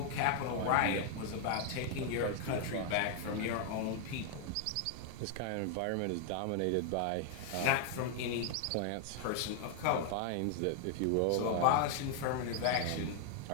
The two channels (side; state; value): both; different; correlation 0.00